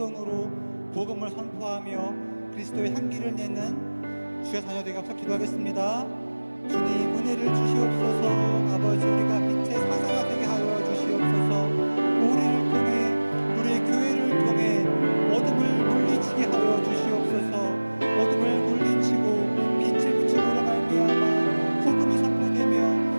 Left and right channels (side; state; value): both; inverted; correlation -1.00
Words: 복음을 선포하며 그리스도의 향기를 내는 주의 자녀되게 하옵소서. 기도하겠습니다. 주님 은혜를 주시옵소서. 아버지 우리가 빛의 사자가 되게 하여 주시옵소서. 우리를 통해 우리의 교회를 통해 어둠을 물리치게 하여 주시옵소서. 어둠을 물리치고 빛을 비추므로 말미암아 복음이 선포되며